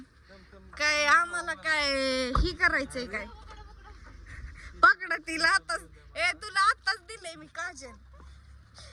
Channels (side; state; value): both; identical; correlation 1.00